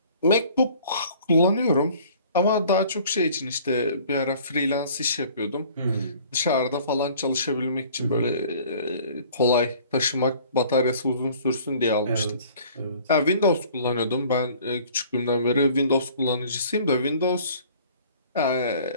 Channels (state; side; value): inverted; both; correlation -0.52